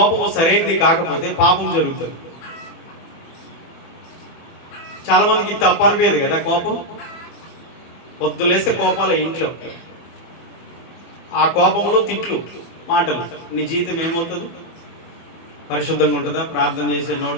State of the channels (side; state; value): right; late; 24 ms